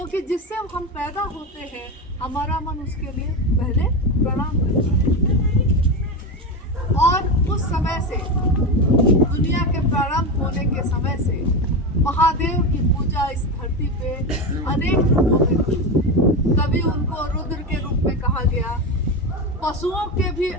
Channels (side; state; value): both; normal; correlation 0.17